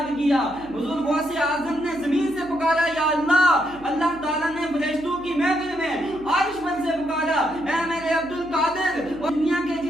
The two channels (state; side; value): noise; right; hum, 21 dB below the sound